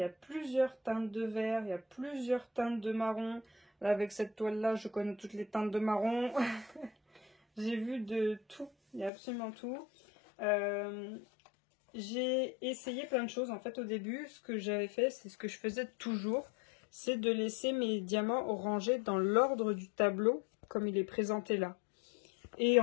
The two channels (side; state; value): right; drops out; at 9.1 s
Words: a plusieurs teintes de vert, il y a plusieurs teintes de marron. Là, avec cette toile-là, je connais toutes les teintes de marron. J'ai vu de tout, il y a absolument tout. J'ai essayé plein de choses. En fait, au début, ce que j'avais fait, c'est ce que je faisais toujours, c'est de laisser mes diamants rangés dans l'ordre du tableau, comme il est présenté là. Et